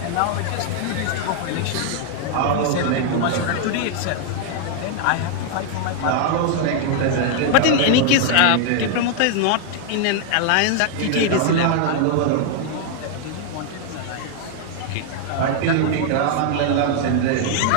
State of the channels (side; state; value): both; different; correlation 0.00